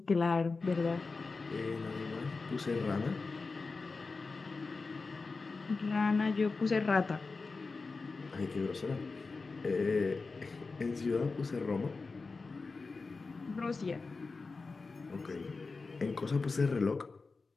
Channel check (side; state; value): right; quieter; 4.1 dB